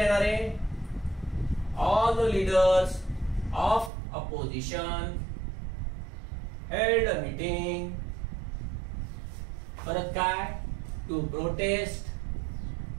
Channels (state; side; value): drops out; left; at 3.9 s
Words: आहे, all the leaders of opposition held a meeting. परत काय, to protest